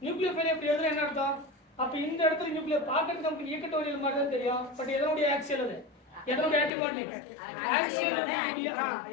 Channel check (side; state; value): right; drops out; at 6.7 s